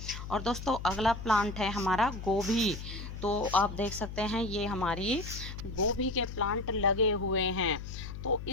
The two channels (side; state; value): left; noise; hum, 9 dB below the sound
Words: और दोस्तों, अगला प्लांट है हमारा गोभी। तो आप देख सकते हैं ये हमारी गोभी के प्लांट लगे हुए हैं। तो